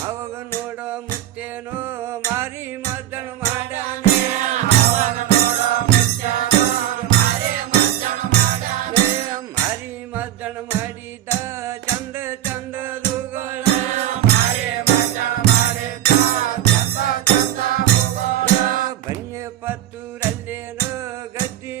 ಅವಾಗ ನೋಡ ಮುತ್ತೇನೋ ಮಾರಿ ಮದ್ದಣ ಮಾಡ್ಯಾನೆ ಮಾರಿ ಮದ್ದಣ ಮಾಡಿದ ಚಂದ ಚಂದದುಗಳ ಬನ್ನಿ ಪತ್ತೂರಲ್ಲೇನೋ ಗದ್ದಿ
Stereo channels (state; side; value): quieter; left; 12.2 dB